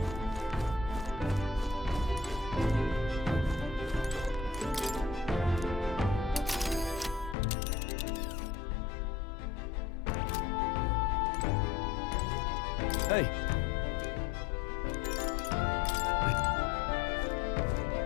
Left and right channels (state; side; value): drops out; right; at 7.4 s